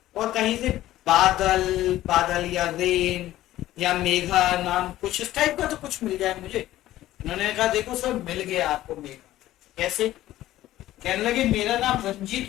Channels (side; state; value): right; quieter; 14.6 dB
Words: और कहीं से बादल या रेन या मेघा नाम कुछ इस टाइप का तो कुछ मिल जाए मुझे। उन्होंने कहा देखो सर मिल गया आपको मेघा। कैसे। कहने लगे मेरा नाम